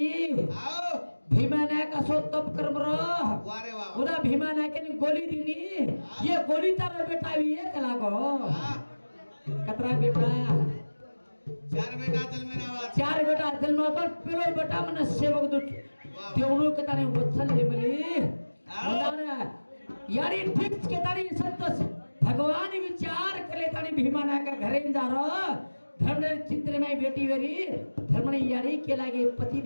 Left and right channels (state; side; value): inverted; both; correlation -1.00